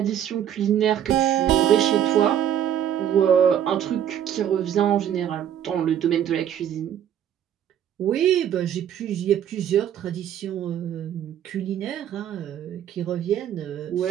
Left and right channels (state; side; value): quieter; left; 10.0 dB